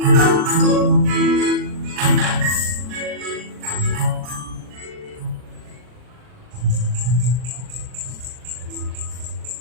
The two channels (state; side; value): late; left; 40 ms